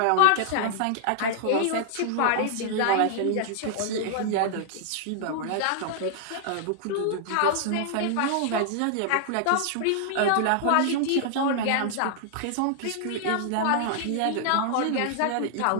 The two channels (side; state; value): both; different; correlation -0.01